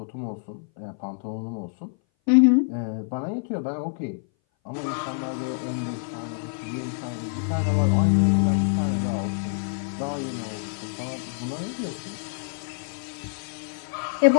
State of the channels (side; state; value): right; silent; 58 dB below the other